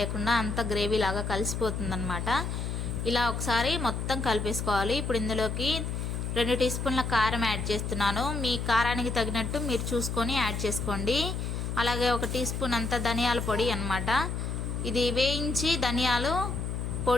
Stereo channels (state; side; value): noise; left; hum, 3 dB below the sound